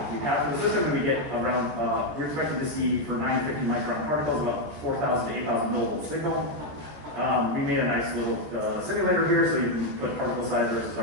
have for the system, and we get around, we're expected to see for 950 micron particles about 4,000 to 8,000 millivolt signal. We made a nice little simulator here, so you can put particle size versus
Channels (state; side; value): late; left; 14 ms